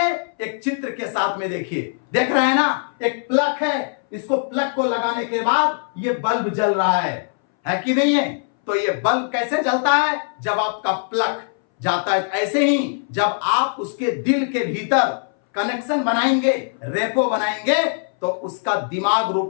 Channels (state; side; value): silent; right; 62 dB below the other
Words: एक चित्र के साथ में देखिए, देख रहे हैं ना, एक प्लग है, इसको प्लग को लगाने के बाद ये बल्ब जल रहा है कि नहीं है? तो ये बल्ब कैसे जलता है? जब आपका प्लग जाता है। ऐसे ही जब आप उसके दिल के भीतर कनेक्शन बनाएंगे, रेपो बनाएंगे, तो उसका दिमाग